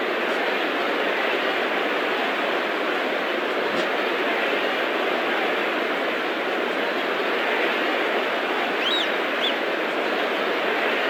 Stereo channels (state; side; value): identical; both; correlation 1.00